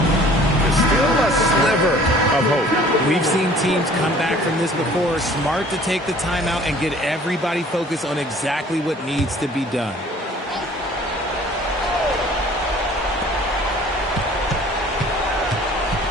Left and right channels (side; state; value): both; normal; correlation 0.51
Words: Still a sliver of hope. We've seen teams come back from this before. Smart to take the timeout and get everybody focused on exactly what needs to be done.